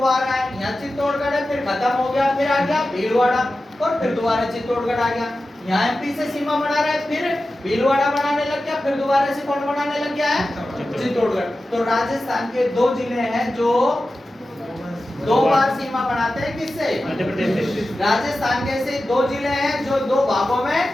है, यहाँ चित्तौड़गढ़ है, फिर खत्म हो गया, फिर आ गया भीलवाड़ा और फिर दोबारा चित्तौड़गढ़ आ गया। यहाँ एमपी से सीमा बना रहा है, फिर भीलवाड़ा बनाने लग गया, फिर दोबारा से कौन बनाने लग गया है? चित्तौड़गढ़। तो राजस्थान के 2 जिले हैं जो 2 बार सीमा बनाते हैं। किससे? मध्य प्रदेश से। राजस्थान के ऐसे 2 जिले हैं जो 2 भागों में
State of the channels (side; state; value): both; normal; correlation 0.94